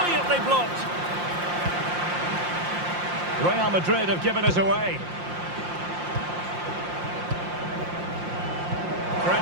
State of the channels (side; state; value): left; late; 5.7 ms